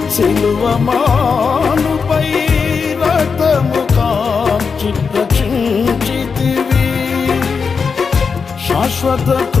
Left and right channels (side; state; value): right; quieter; 5.5 dB